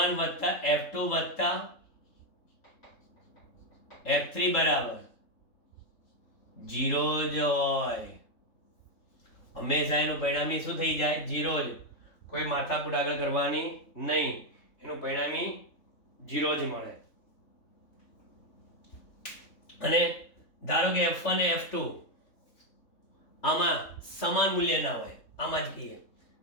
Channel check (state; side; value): late; right; 3.5 ms